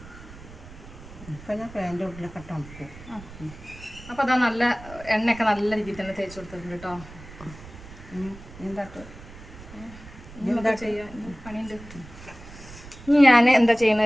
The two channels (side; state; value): right; noise; rumble, 17 dB below the sound